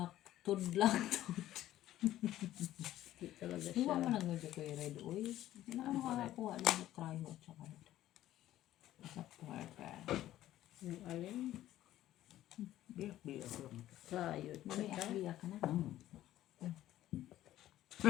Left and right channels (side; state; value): right; quieter; 13.7 dB